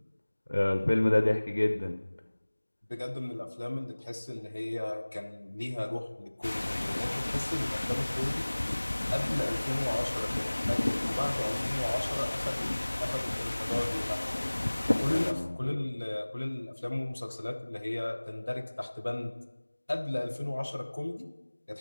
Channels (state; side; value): inverted; both; correlation -1.00